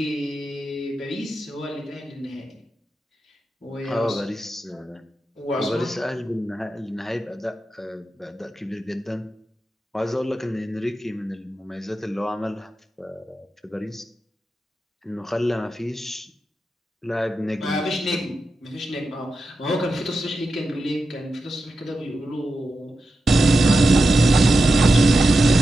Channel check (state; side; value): normal; both; correlation 0.90